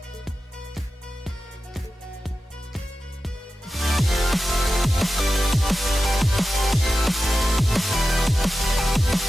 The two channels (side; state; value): both; normal; correlation 0.93